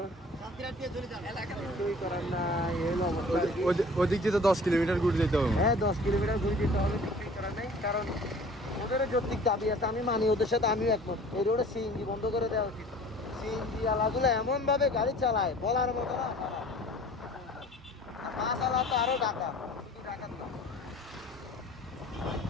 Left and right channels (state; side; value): normal; both; correlation 0.47